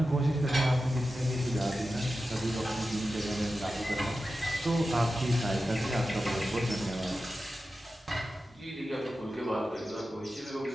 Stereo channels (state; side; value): normal; both; correlation 0.92